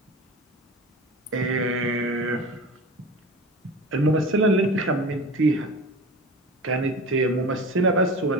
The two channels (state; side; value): normal; both; correlation 0.33